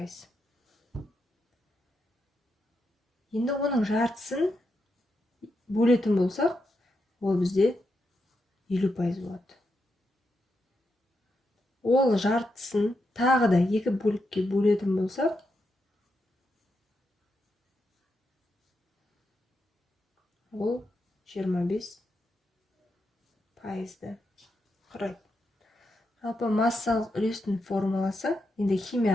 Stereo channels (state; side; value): normal; both; correlation 0.84